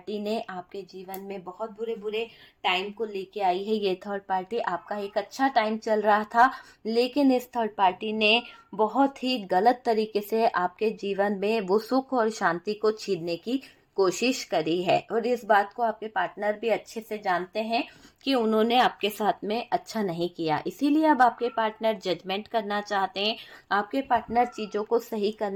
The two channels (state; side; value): identical; both; correlation 1.00